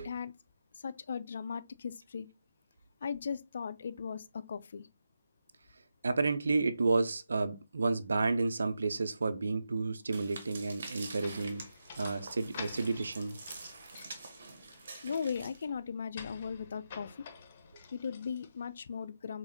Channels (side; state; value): both; inverted; correlation -0.88